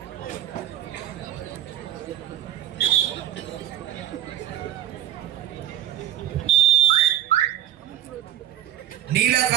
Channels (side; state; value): left; quieter; 12.0 dB